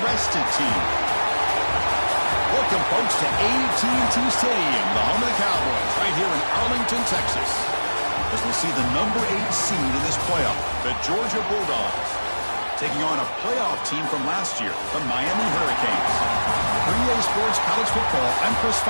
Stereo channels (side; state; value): both; inverted; correlation -1.00